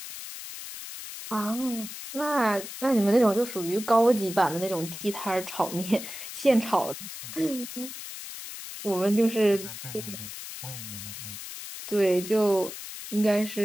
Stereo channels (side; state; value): left; noise; hiss, 10 dB below the sound